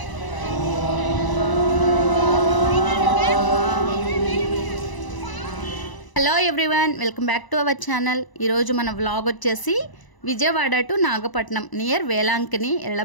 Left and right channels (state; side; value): late; right; 1.0 ms